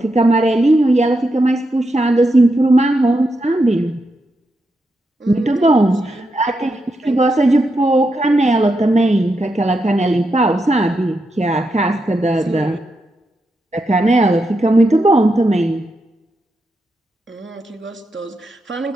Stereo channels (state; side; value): normal; both; correlation 0.84